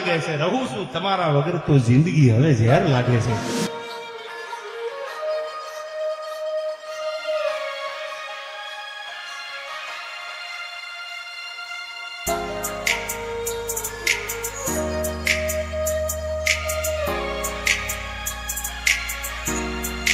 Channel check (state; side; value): identical; both; correlation 1.00